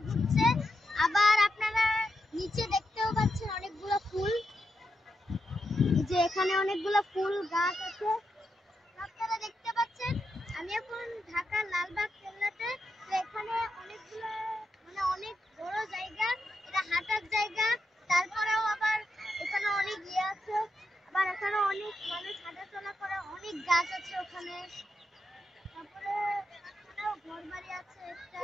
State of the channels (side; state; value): both; normal; correlation 0.85